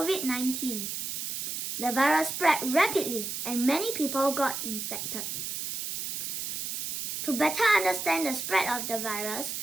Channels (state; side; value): noise; right; hiss, 4 dB below the sound